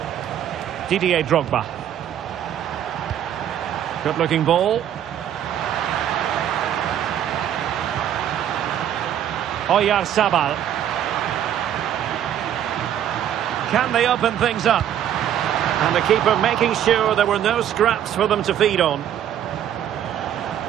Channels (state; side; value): quieter; left; 10.3 dB